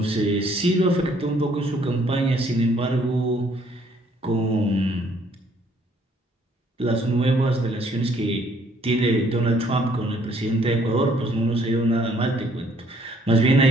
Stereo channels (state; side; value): normal; both; correlation 0.64